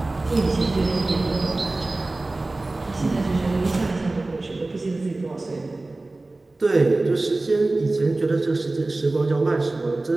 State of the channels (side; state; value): left; quieter; 3.0 dB